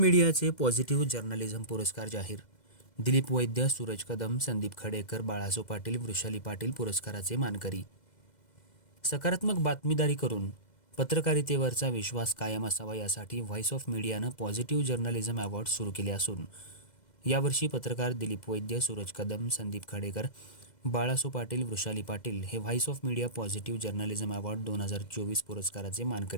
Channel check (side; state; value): right; late; 2.0 ms